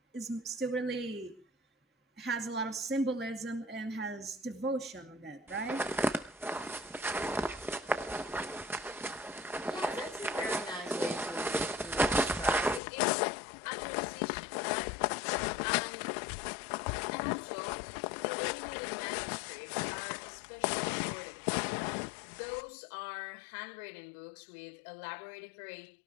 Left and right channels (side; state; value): right; drops out; at 12.8 s